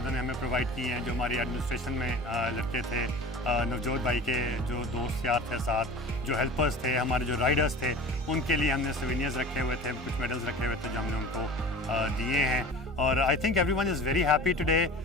हमें प्रोवाइड किए हैं, जो हमारी एडमिनिस्ट्रेशन में लड़के थे, नवजोत भाई के जो दोस्त यार थे साथ, जो हेल्पर्स थे, हमारे जो राइडर्स थे, उनके लिए हमने सोवेनियर्स रखे हुए थे, कुछ मेडल्स रखे हुए थे जो हमने उनको दिए हैं। और I think everyone is very happy today.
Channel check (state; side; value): normal; both; correlation 0.38